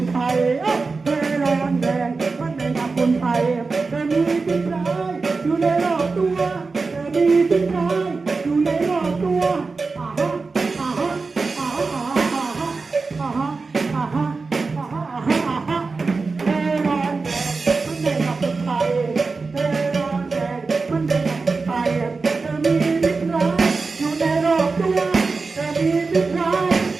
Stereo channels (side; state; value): left; quieter; 4.2 dB